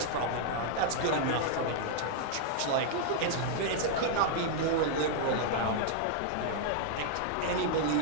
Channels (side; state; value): both; different; correlation -0.01